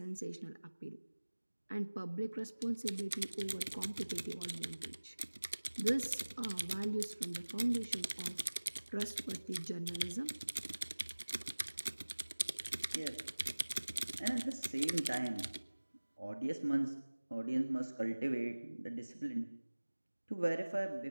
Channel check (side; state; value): both; inverted; correlation -1.00